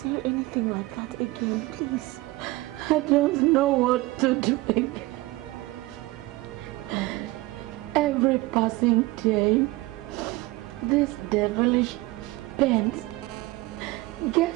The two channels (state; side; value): quieter; left; 20.4 dB